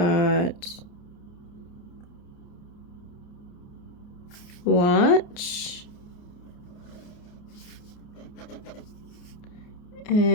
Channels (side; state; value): right; late; 29 ms